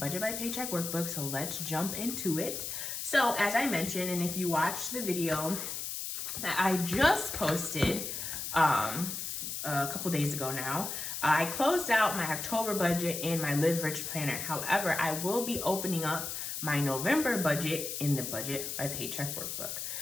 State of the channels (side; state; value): left; noise; hiss, 5 dB below the sound